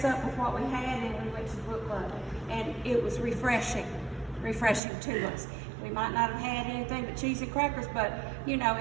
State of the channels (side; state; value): left; drops out; at 4.8 s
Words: up with what we had, and we went to the book club, and it was refreshing to us. We might not have had anything but cheese and crackers, but